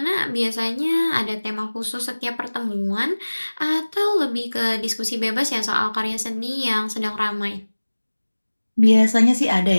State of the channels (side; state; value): both; inverted; correlation -1.00